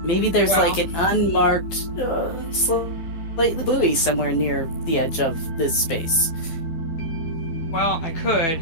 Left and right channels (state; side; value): late; right; 12 ms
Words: Maybe there's like an unmarked slightly buoy somewhere near the edge of this space. Well, I could.